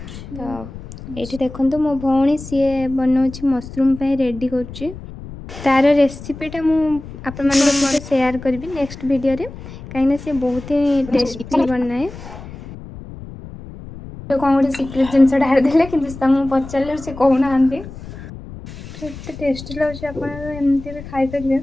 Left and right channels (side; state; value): left; noise; rumble, 14 dB below the sound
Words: तो ये देखो मो भौणी सी बनाऊँ मशरूम रेडी कर तार रेसिपीटा मुझे शेयर करी नेक्स्ट वीडियो रे कहीं से बहुत ही टेस्टी बनाए तो कौन गोटे सिक्रेट जिनस ढारदे कि पचारे से कहना एत टेस्टी लगे आपमती भी खाईपर